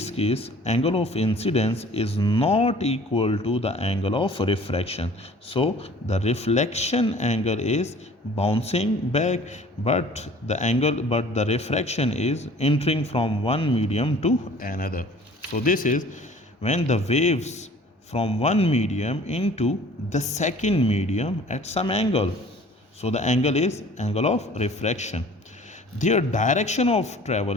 case, angle of incidence is not equal to the angle of refraction. So the reflection angle is bouncing back, but the refraction is entering from one medium to another. So this is when the waves from one medium into the second medium at some angle. So the angle is angle of refraction. Their direction of travel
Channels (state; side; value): normal; both; correlation 0.49